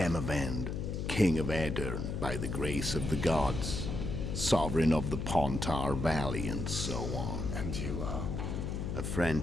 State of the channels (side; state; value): left; noise; hum, 3 dB below the sound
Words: king of Aedirn, by the grace of the gods, sovereign of the Pontar Valley, and so on. And you are? A